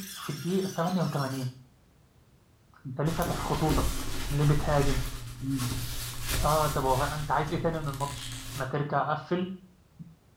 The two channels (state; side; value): identical; both; correlation 1.00